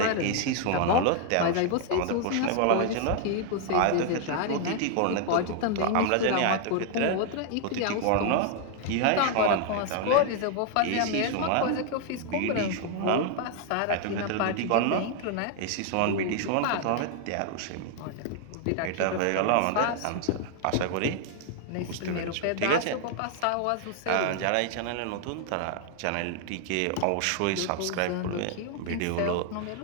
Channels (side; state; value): both; different; correlation 0.00